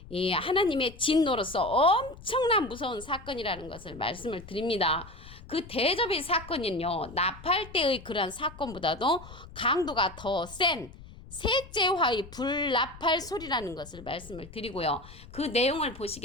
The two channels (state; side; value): noise; left; rumble, 17 dB below the sound